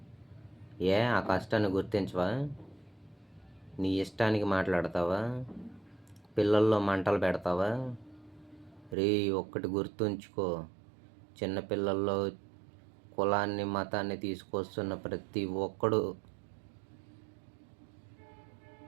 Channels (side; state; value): left; drops out; at 9.0 s